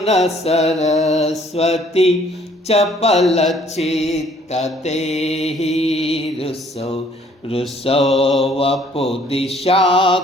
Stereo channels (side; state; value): both; normal; correlation 0.60